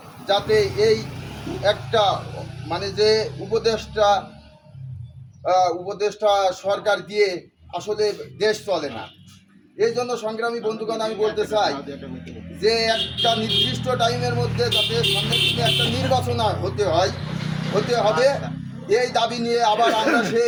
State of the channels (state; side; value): identical; both; correlation 1.00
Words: যাতে এই একটা যে উপদেষ্টা সরকার দিয়ে আসলে দেশ চলে না। এই জন্য সংগ্রামী বন্ধুগণ আমি বলতে চাই যে একটা নির্দিষ্ট টাইমের মধ্যে যাতে সামনের দিনে একটা নির্বাচন হতে হবে এই দাবি নিয়ে আবার আমরা